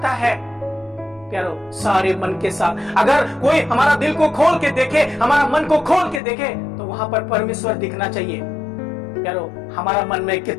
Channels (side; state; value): right; drops out; at 6.2 s